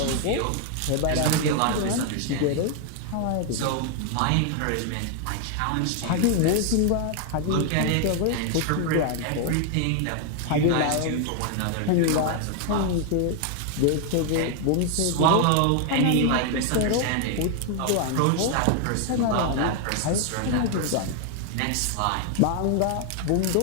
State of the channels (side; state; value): both; different; correlation 0.00